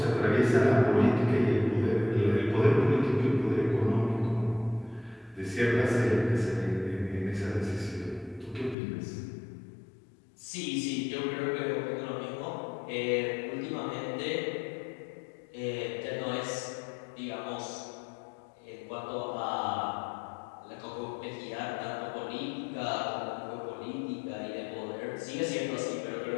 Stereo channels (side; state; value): right; drops out; at 8.8 s